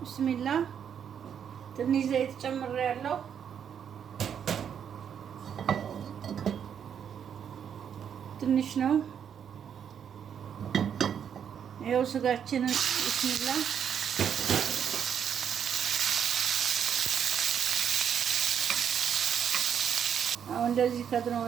ትንሽ ዘይት ጨምሬያለሁ። ትንሽ ነው። ይኸው ስጋችንን ቢስሚላ አሁን እንደዚህ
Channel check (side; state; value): left; quieter; 8.2 dB